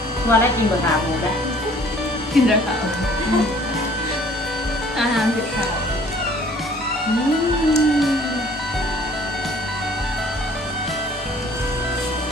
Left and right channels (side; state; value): both; normal; correlation 0.55